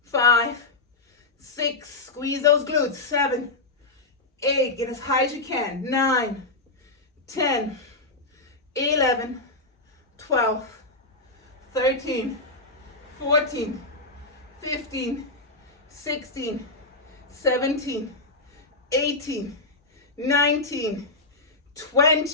5, 6, squeeze those glutes. 7, 8, get as high as you can. 9, 10, 11, 12, 13, 14, 15, 16, 17, 18, 19,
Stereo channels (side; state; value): right; quieter; 3.3 dB